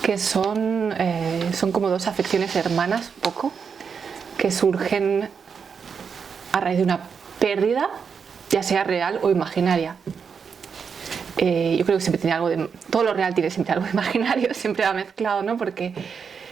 que son como dos afecciones hermanas, un poco, que surgen a raíz de una pérdida, ya sea real o imaginaria. Yo creo que siempre tiene algo de... Todo lo real tiene siempre algo de imaginario, siempre va mezclado, ¿no? Porque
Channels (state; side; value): quieter; left; 6.2 dB